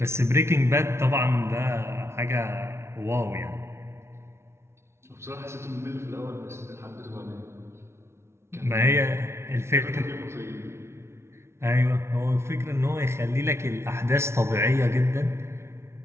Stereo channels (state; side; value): late; left; 0.13 ms